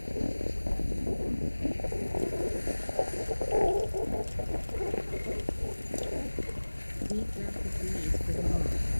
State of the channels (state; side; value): inverted; both; correlation -1.00